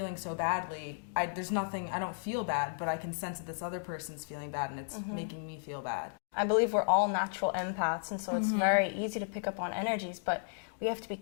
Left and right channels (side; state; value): right; silent; digital silence